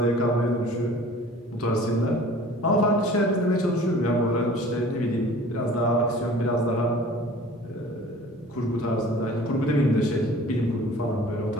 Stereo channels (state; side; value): normal; both; correlation 0.46